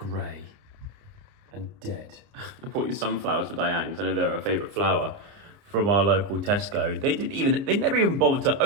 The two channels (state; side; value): late; left; 29 ms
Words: and dead. I bought you sunflowers for Diane because I know they're her favourite flower from our local Tesco. They never even bothered to